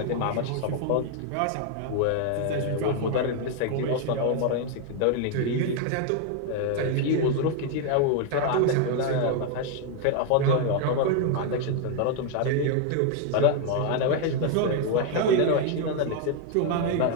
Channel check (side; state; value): both; different; correlation 0.00